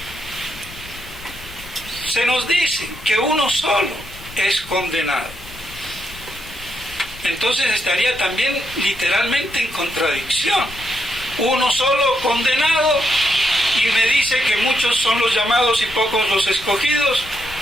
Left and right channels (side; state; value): left; noise; rumble, 18 dB below the sound